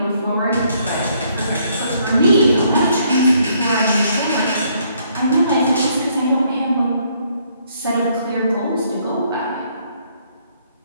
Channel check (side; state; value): both; inverted; correlation -0.68